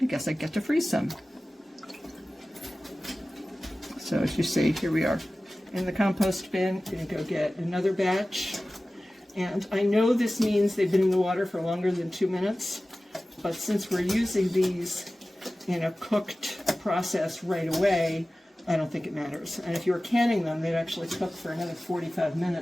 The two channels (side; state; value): both; normal; correlation 0.96